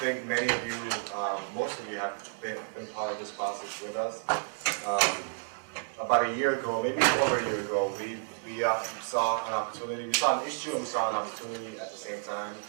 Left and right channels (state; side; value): silent; left; 57 dB below the other